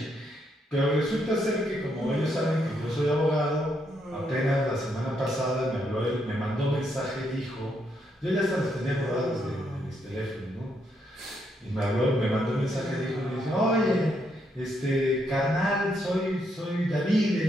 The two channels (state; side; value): normal; both; correlation 0.76